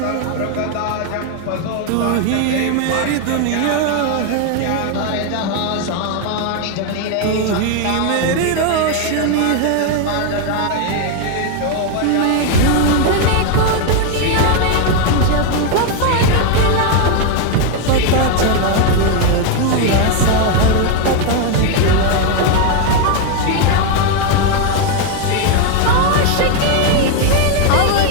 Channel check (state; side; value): different; both; correlation 0.01